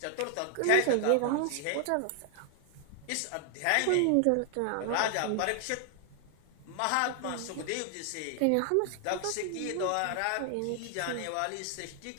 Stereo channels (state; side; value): different; both; correlation 0.00